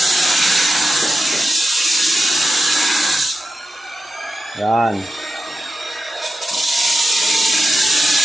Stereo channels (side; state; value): both; normal; correlation 0.90